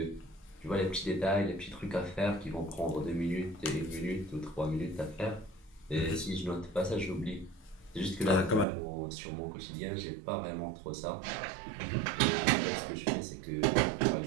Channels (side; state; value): left; drops out; at 8.7 s